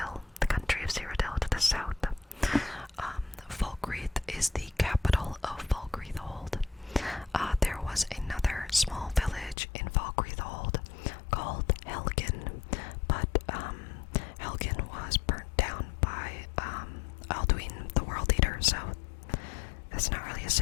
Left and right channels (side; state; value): right; drops out; at 9.6 s